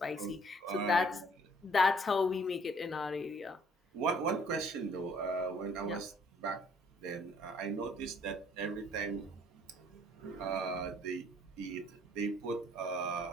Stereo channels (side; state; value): both; normal; correlation 0.60